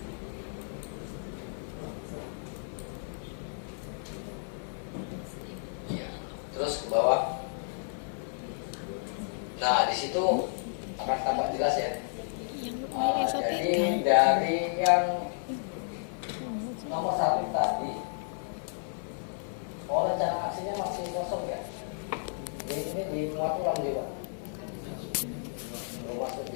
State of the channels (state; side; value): silent; right; 56 dB below the other